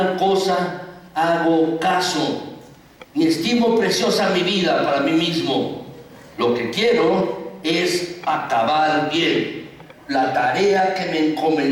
cosa hago caso, ni estimo preciosa mi vida para mí mismo. Lo que quiero es acabar bien la tarea que me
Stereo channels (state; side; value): identical; both; correlation 1.00